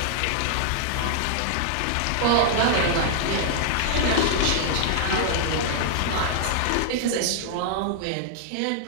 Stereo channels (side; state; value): both; different; correlation -0.01